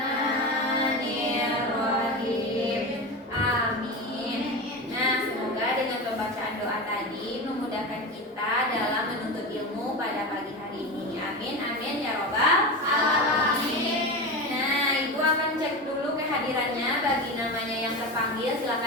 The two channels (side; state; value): both; normal; correlation 0.23